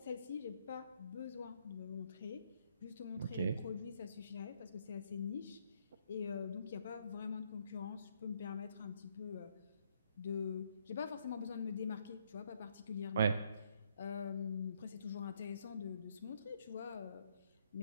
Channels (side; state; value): both; inverted; correlation -0.71